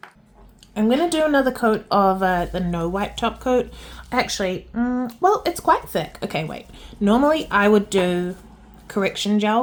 I'm going to do another coat of the no wipe top coat. Actually, well, it's quite thick. Okay, wait. Normally I would do correction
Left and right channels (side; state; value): both; identical; correlation 1.00